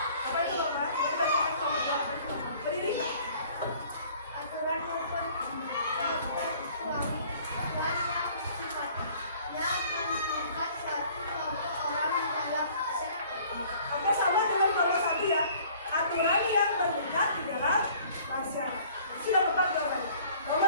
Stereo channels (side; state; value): both; inverted; correlation -0.54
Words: Sudah tepat jawabannya.